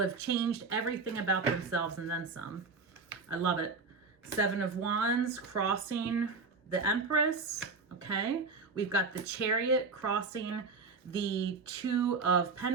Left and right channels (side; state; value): left; quieter; 4.3 dB